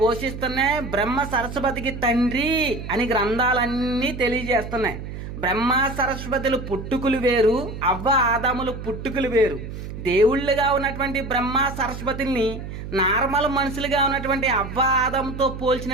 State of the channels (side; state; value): right; noise; hum, 9 dB below the sound